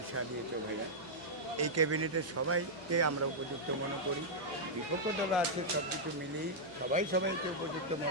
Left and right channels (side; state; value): right; noise; hum, 26 dB below the sound